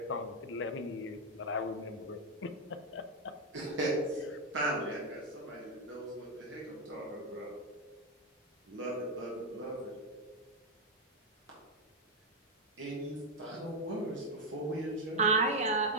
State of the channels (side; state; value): both; normal; correlation 0.04